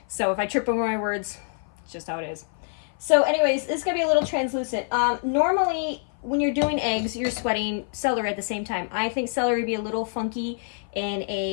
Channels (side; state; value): right; silent; 56 dB below the other